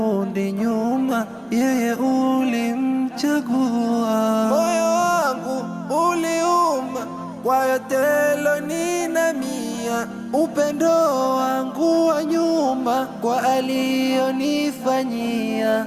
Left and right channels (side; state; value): both; identical; correlation 1.00